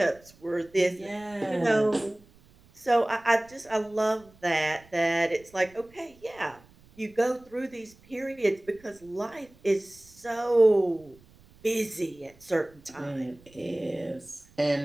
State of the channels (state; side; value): noise; right; rumble, 27 dB below the sound